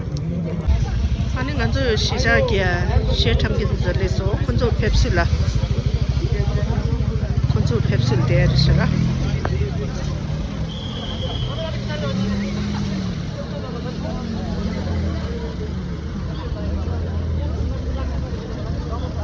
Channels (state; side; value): identical; both; correlation 1.00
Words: 아니 간저 시작이야 시작하기도 전에서 건조 펩술라 건조 펩술 데르시라